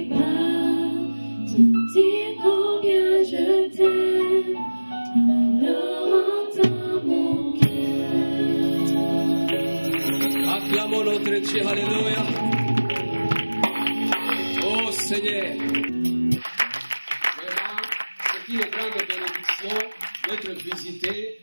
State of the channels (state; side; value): inverted; both; correlation -1.00